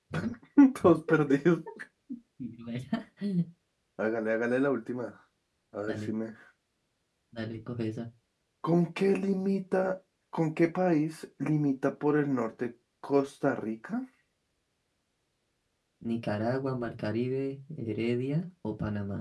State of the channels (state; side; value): identical; both; correlation 1.00